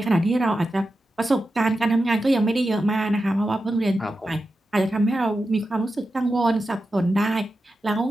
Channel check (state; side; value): normal; both; correlation 0.91